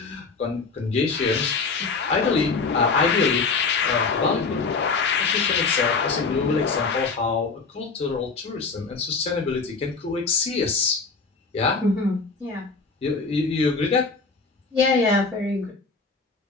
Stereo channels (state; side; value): quieter; right; 4.4 dB